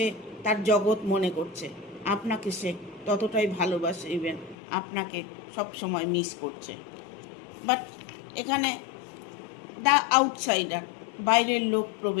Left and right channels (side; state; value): right; drops out; at 4.5 s